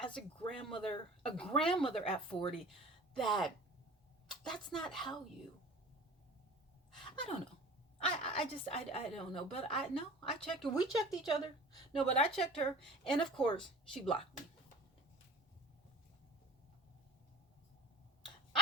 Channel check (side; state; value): both; normal; correlation 0.41